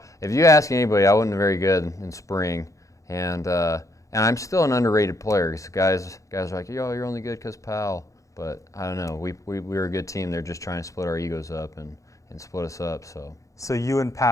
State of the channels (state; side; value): late; right; 0.15 ms